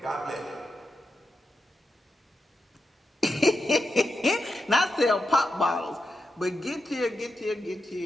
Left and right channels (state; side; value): normal; both; correlation 0.87